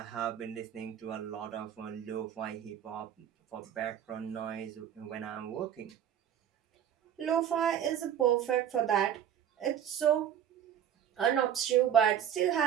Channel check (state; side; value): quieter; left; 9.7 dB